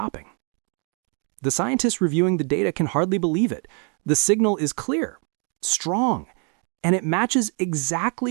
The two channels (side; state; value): left; quieter; 39.0 dB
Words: The scientists reviewing the data can hardly believe it. The signal is clear, strong, and it matches